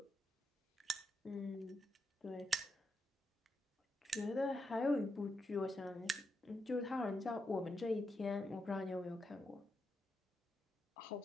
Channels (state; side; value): normal; both; correlation 0.84